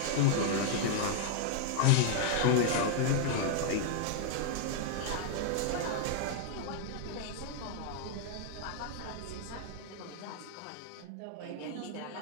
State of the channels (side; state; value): both; different; correlation -0.01